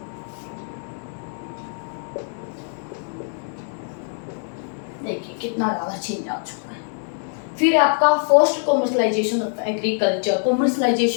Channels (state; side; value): silent; right; 56 dB below the other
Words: देखिए कितना ज़्यादा चेंज आ चुका है। फिर आपका first commercialisation of agriculture.